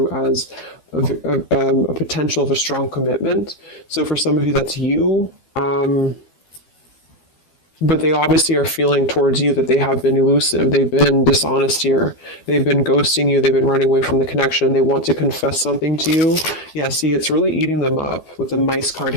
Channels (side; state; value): right; late; 12 ms